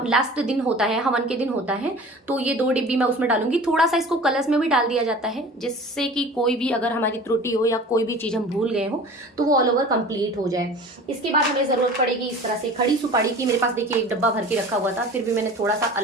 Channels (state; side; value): normal; both; correlation 0.41